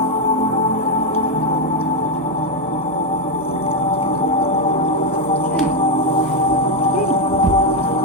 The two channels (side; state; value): both; normal; correlation 0.05